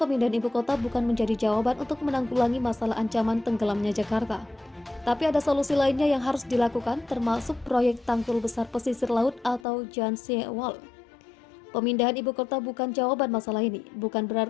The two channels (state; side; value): drops out; right; at 9.7 s